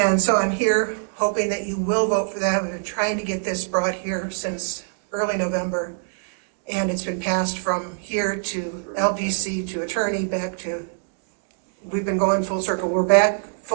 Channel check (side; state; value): left; silent; digital silence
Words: so I'm here hoping that you will vote for that. We've been trying to get this brought here since early November, and it's been passed from here to LPC to attorney back to, we've been going full circle. We're back